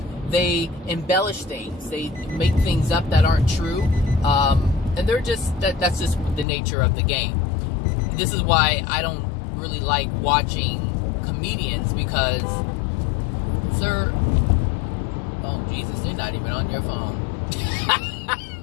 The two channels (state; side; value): drops out; right; at 6.5 s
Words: They embellish things. They make things up that aren't true. And they're just, that's just the nature of the game. This is why I don't really like watching comedians, because they're, oh Jesus, they're not even on your phone.